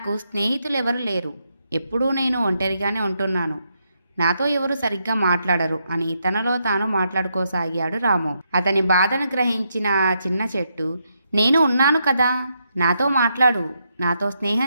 స్నేహితులు ఎవరు లేరు. ఎప్పుడూ నేను ఒంటరిగానే ఉంటున్నాను. నాతో ఎవరు సరిగ్గా మాట్లాడరు అని తనలో తాను మాట్లాడుకోసాగాడు రాము. అతని బాధను గ్రహించిన ఆ చిన్న చెట్టు, నేను ఉన్నాను కదా, నాతో మాట్లాడు, నాతో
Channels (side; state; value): both; inverted; correlation -0.80